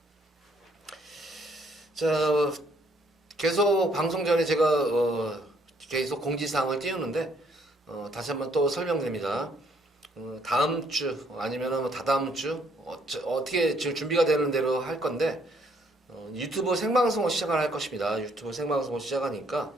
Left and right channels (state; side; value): normal; both; correlation 0.67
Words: 자, 계속 방송 전에 제가 계속 공지사항을 띄우는데 다시 한번 또 설명드립니다. 다음 주 아니면 다다음 주 어떻게 지금 준비가 되는 대로 할 건데 유튜브 생방송을 시작을 할 것입니다. 유튜브 생방송을 시작하니까